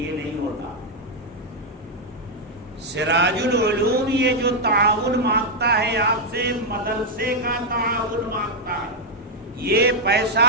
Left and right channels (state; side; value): normal; both; correlation -0.01